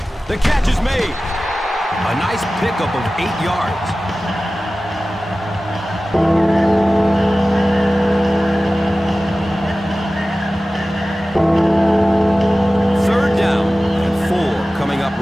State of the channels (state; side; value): normal; both; correlation 0.96